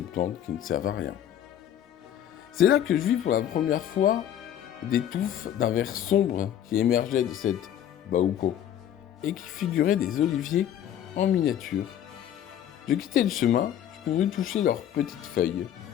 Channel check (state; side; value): quieter; right; 10.5 dB